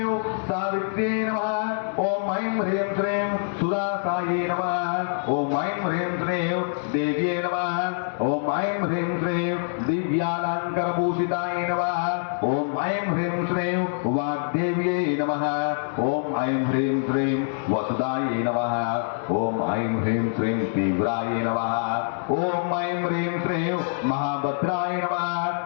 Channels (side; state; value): right; silent; digital silence